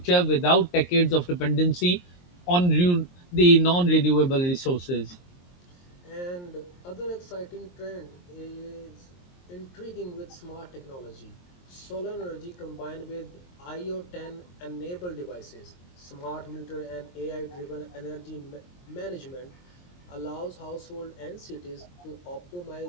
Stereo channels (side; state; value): right; late; 23 ms